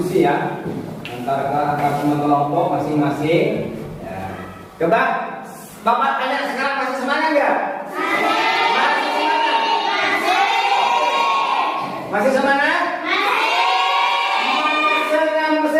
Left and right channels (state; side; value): identical; both; correlation 1.00